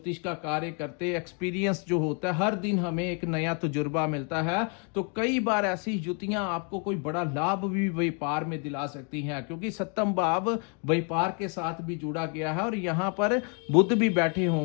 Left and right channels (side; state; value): right; quieter; 38.4 dB